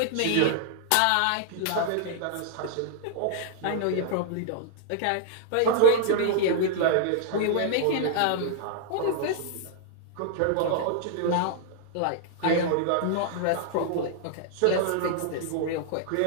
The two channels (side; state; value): both; different; correlation -0.01